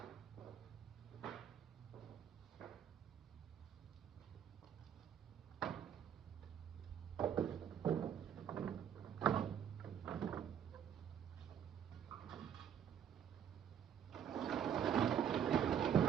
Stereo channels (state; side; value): quieter; left; 8.8 dB